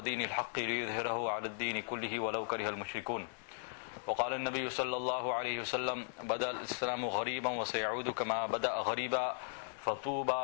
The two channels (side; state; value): right; silent; 53 dB below the other